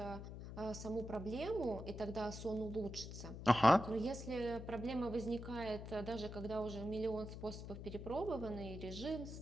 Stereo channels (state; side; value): noise; left; hum, 9 dB below the sound